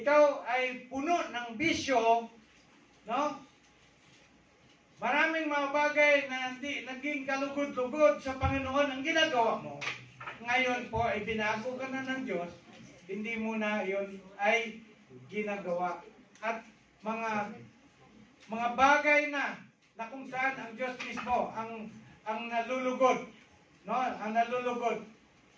ay puno ng bisyo, no? Maraming mga bagay na hindi naging kalugod-lugod sa Panginoon ang ginagawa mo. Ngayon po ay binago ka na ng Diyos, hindi mo na yun ay ginagawa. At mga bagay na kung saan ang Diyos mismo ang nalulugod, no? Ang nalulugod,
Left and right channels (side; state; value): both; identical; correlation 1.00